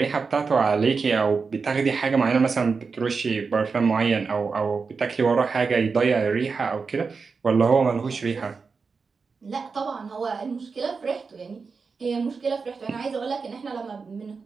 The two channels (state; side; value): quieter; left; 4.9 dB